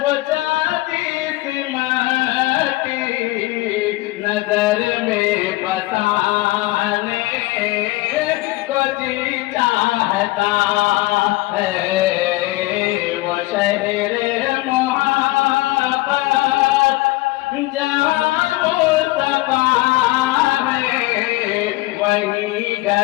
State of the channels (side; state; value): right; quieter; 19.9 dB